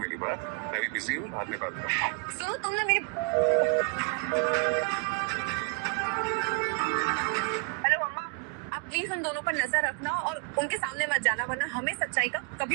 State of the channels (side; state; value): left; quieter; 36.9 dB